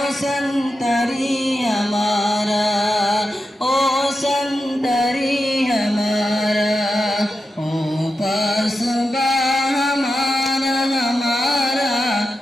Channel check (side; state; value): both; normal; correlation 0.89